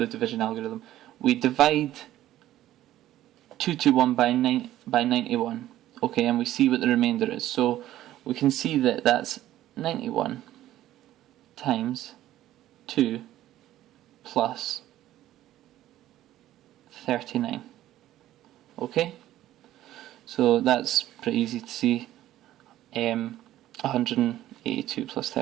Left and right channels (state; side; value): quieter; left; 13.7 dB